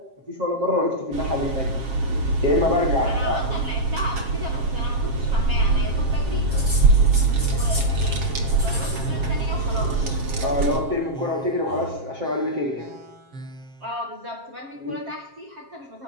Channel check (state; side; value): late; left; 7.4 ms